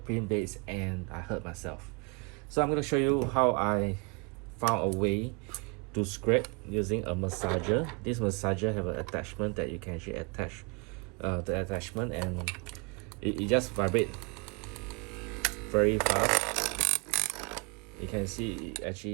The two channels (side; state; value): left; quieter; 32.1 dB